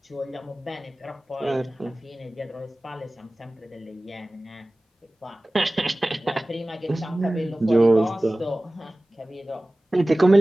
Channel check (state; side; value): normal; both; correlation 0.98